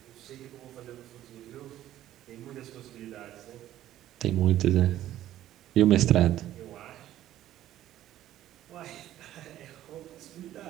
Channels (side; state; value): left; quieter; 13.1 dB